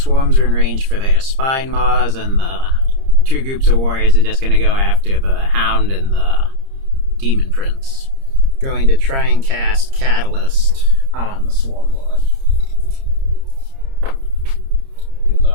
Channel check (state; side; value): late; left; 30 ms